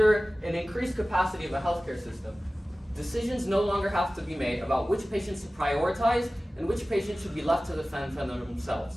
an increased capacity of a healthcare system, decisions no longer have to be made about which patients to prioritize and which patients should be left to defend for themselves,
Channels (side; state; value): both; normal; correlation 0.97